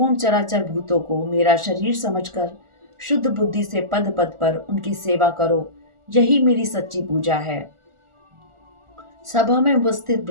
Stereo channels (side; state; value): left; late; 1.4 ms